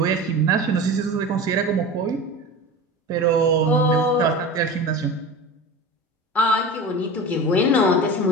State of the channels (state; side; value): normal; both; correlation 0.31